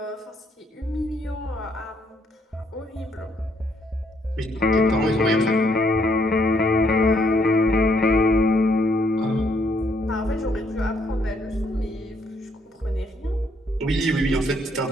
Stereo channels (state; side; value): normal; both; correlation 0.70